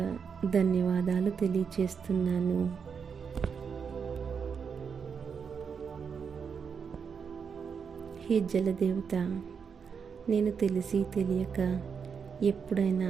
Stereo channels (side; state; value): left; quieter; 6.3 dB